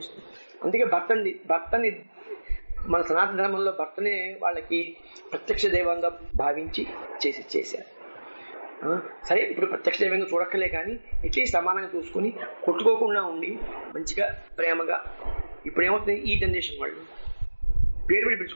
అందుకే భర్తని మన సనాతన ధర్మంలో భర్తనే వాళ్ళకి ప్రత్యక్ష దైవంగా భావించి చేశారు. సరే, ఇప్పుడు ప్రత్యక్ష దైవంగా చూడక్కలే, కానీ ఎట్లీస్ట్ సమానంగా చూసుకుని కొట్టుకోకుండా ఉండి మంచిగా ప్రేమగా. ఇప్పుడు ఏమవుతుంది, ఈ జనరేషన్ వాళ్ళు పేరు పెట్టి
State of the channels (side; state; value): both; inverted; correlation -1.00